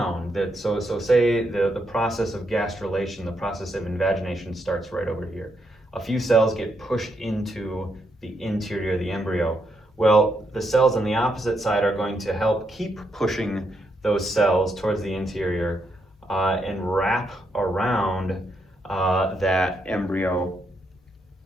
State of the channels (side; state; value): both; normal; correlation 0.79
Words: that. So say the process of gastrulation, the process of invagination starts right over here. A few cells get pushed into the interior of the embryo. Well, the cells on the opposite side are going to help keep pushing those cells towards the interior and wrap around that embryo